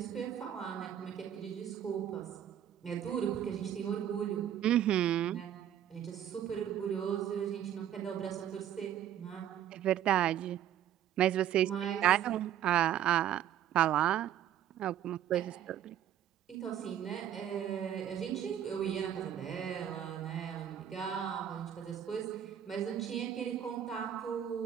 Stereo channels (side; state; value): left; quieter; 10.5 dB